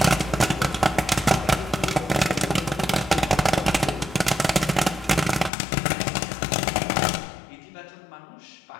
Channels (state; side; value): drops out; right; at 5.5 s